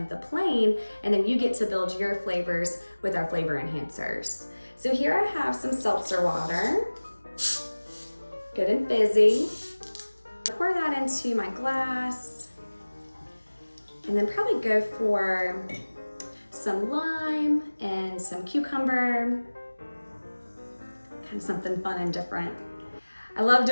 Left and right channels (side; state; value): both; inverted; correlation -1.00